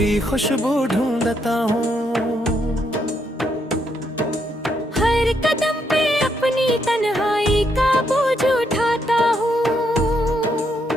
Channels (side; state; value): both; normal; correlation 0.76